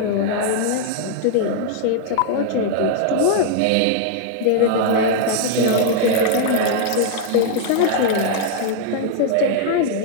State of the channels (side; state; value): both; different; correlation -0.01